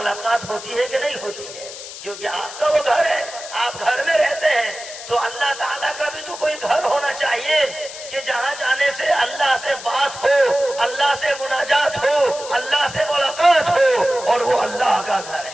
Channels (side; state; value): left; noise; hiss, 12 dB below the sound